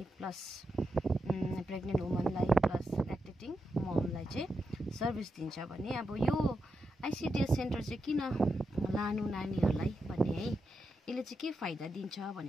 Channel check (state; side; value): normal; both; correlation 0.86